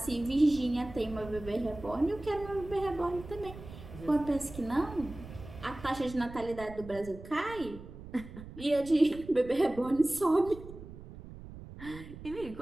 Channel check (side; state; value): right; noise; rumble, 14 dB below the sound